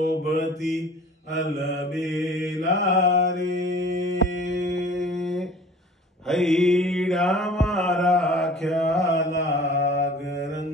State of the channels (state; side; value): normal; both; correlation 0.46